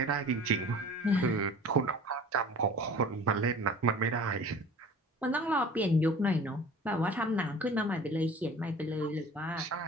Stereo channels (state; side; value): normal; both; correlation 0.44